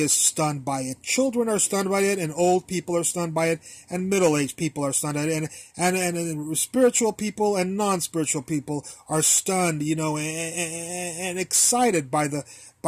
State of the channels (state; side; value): identical; both; correlation 1.00